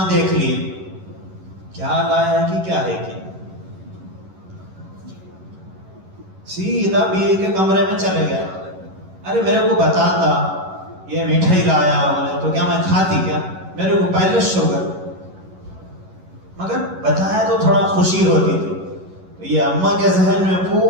دیکھ لی کیا لایا کہ کیا ہے کہ سیدھا بیوی کے کمرے میں چلے گیا. ارے میرے کو بتاتا یہ مٹھائی لایا، بولے تو کیا میں کھاتی؟ کیا میرے کو پہلے شوگر، مگر بتایا تو تھوڑا خوشی ہوتی تھی. تو یہ اماں کے ذہن میں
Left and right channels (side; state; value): left; late; 11 ms